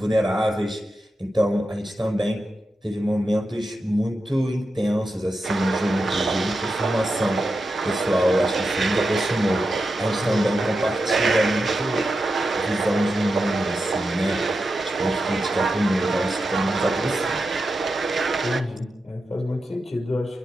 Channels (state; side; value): normal; both; correlation 0.89